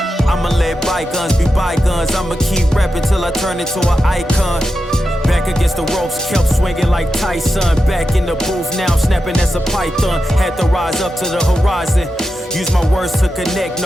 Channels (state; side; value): normal; both; correlation 0.90